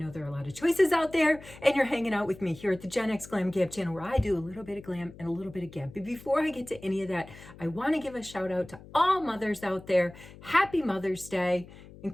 there are a lot of choices out there, and you're hanging out with me here at the Gen X Glam Gab channel, where I do a little bit of glam and a little bit of gab. But before I get to any of that, I want to give a shout out to all mothers out there. Happy Mother's Day,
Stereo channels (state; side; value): noise; left; hum, 19 dB below the sound